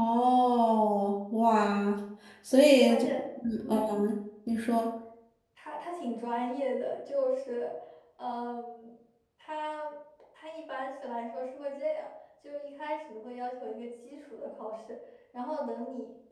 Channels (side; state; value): both; identical; correlation 1.00